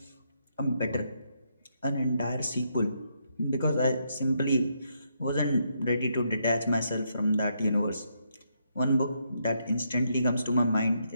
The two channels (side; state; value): both; inverted; correlation -0.77